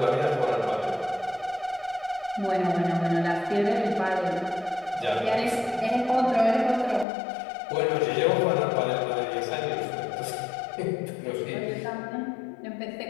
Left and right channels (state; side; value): drops out; right; at 7.1 s